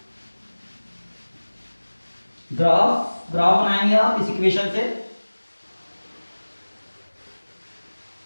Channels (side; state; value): both; inverted; correlation -1.00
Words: ग्राफ बनाएंगे आप इस इक्वेशन से,